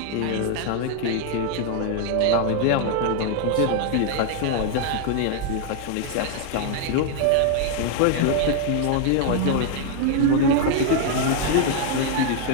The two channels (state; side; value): different; both; correlation 0.00